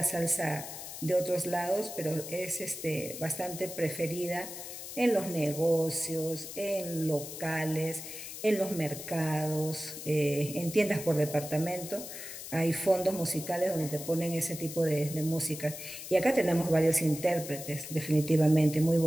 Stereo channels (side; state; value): left; noise; hiss, 10 dB below the sound